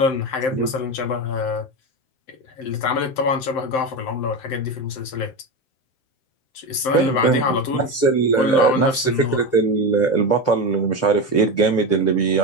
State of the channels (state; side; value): late; right; 7.7 ms